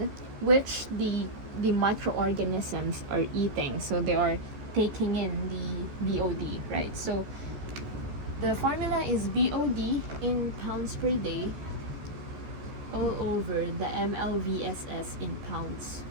which the microorganisms are eating. So they are taking in the BOD, right? So the formula is BOD in pounds per day all over the MLVSS in pounds.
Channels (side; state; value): left; late; 14 ms